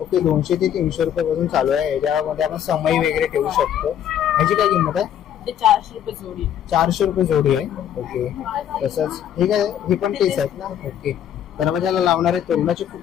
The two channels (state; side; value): quieter; right; 9.9 dB